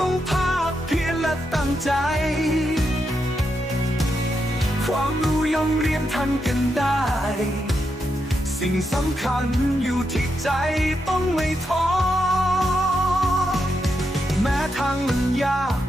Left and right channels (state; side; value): normal; both; correlation 0.83